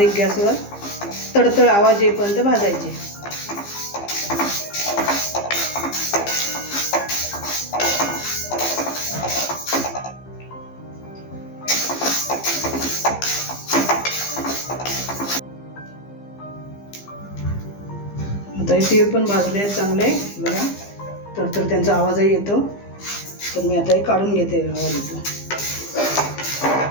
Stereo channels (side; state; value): right; late; 15 ms